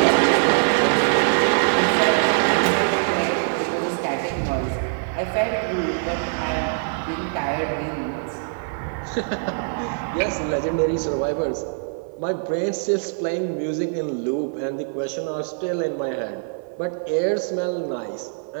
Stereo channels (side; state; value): left; silent; 56 dB below the other